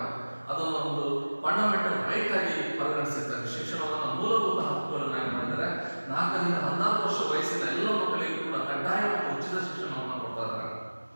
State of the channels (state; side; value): inverted; both; correlation -1.00